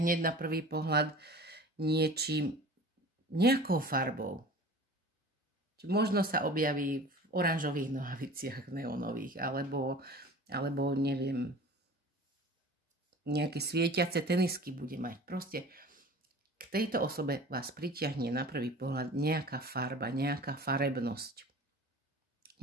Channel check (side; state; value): both; normal; correlation 0.41